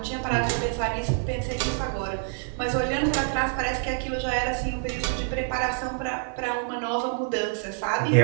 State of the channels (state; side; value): silent; left; 61 dB below the other